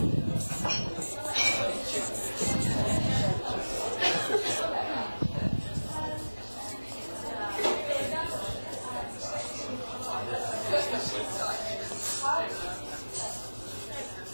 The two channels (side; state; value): both; inverted; correlation -1.00